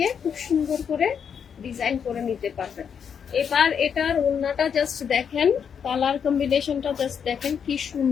খুব সুন্দর করে ডিজাইন করে নিতে পারবেন। এবার এটার ওড়নাটা জাস্ট দেখেন, কালার কম্বিনেশনটা জাস্ট দেখেন কি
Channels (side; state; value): right; quieter; 7.3 dB